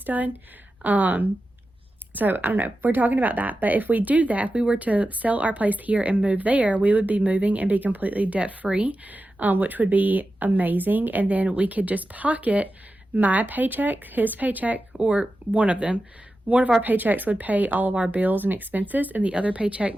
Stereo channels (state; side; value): normal; both; correlation 0.92